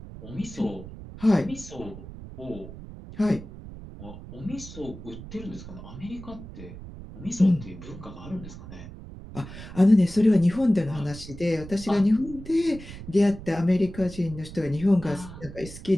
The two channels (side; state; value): right; noise; rumble, 14 dB below the sound